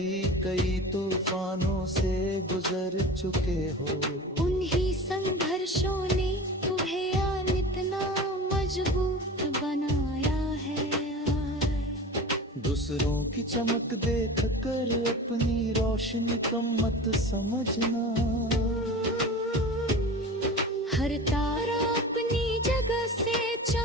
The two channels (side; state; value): both; normal; correlation 0.35